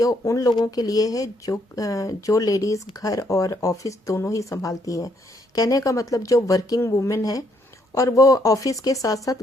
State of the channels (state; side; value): normal; both; correlation 0.72